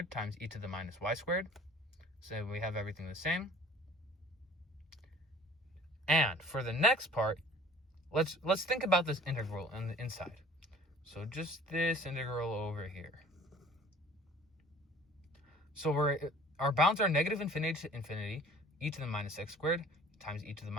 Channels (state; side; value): normal; both; correlation 0.49